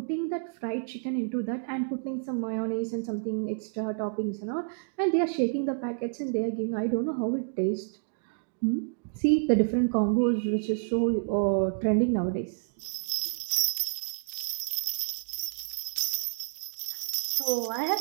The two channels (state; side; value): silent; left; digital silence